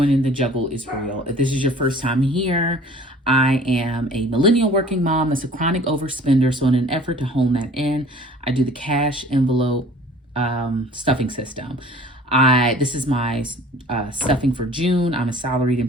The Juggle is Real. If this is your first time here, I am a millennial working mom that's a chronic overspender. So, in an effort to hone that in, I do the cash envelope stuffing system. This is my stuffing for June. I'm a salaried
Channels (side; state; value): both; normal; correlation 0.49